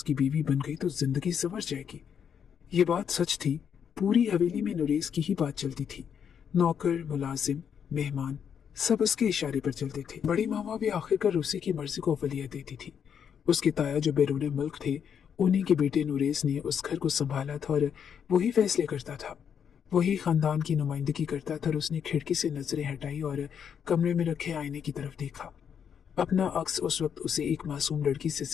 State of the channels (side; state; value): right; quieter; 7.8 dB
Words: बीवी बन गई तो जिंदगी संवर जाएगी। ये बात सच थी। पूरी हवेली में नुरेज की ही बात चलती थी। नौकर, मुलाजिम, मेहमान सब उसके इशारे पर चलते थे। बड़ी मामा भी आखिरकार उसी की मर्जी को अवलियत देती थी। उसके ताया जो बैरून मुल्क थे, उन्हीं के बेटे नुरेज ने उस घर को संभाला था और वही फैसले करता था, वही खानदान की नुमाइंदगी करता था। और उसने खिड़की से नजरें हटाई और कमरे में रखे आईने की तरफ देखा। अपना अक्स उस वक्त उसे एक मासूम लड़की से